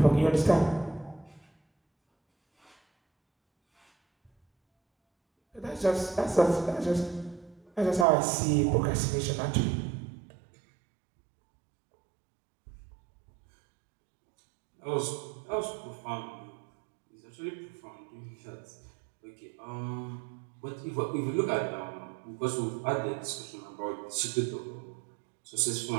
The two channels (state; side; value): drops out; left; at 8.1 s